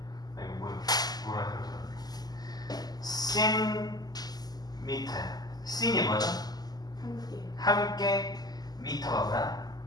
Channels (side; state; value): right; late; 0.19 ms